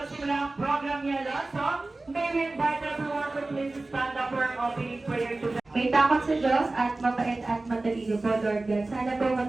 ang program niya, so may we invite everyone to please stand up for an opening prayer to May takot sa Diyos at mabait at matalino po, Lord God. Sana po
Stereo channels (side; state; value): left; quieter; 3.1 dB